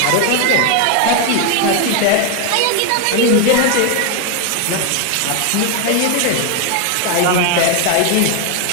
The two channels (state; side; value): different; both; correlation 0.01